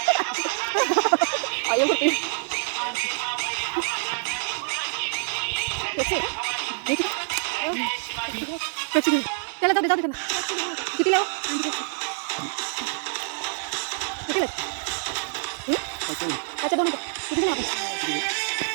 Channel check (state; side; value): silent; left; 61 dB below the other